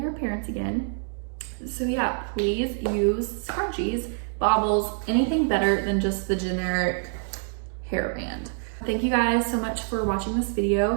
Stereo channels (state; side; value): silent; left; 61 dB below the other